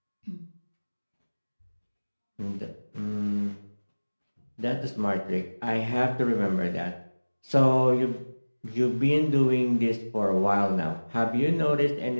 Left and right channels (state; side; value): inverted; both; correlation -1.00